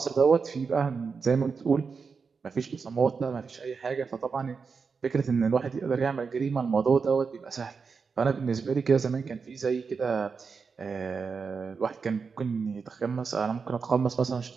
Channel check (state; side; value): quieter; left; 5.3 dB